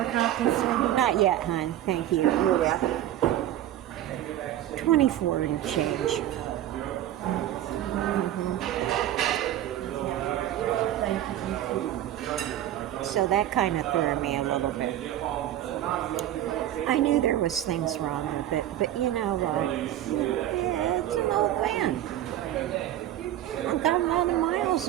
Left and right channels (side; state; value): left; quieter; 12.6 dB